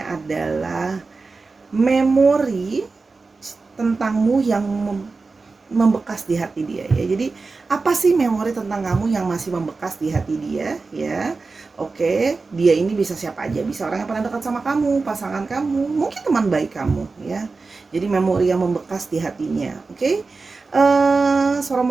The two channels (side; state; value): left; quieter; 4.0 dB